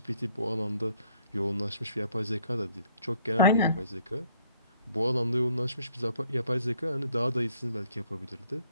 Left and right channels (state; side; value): inverted; both; correlation -0.65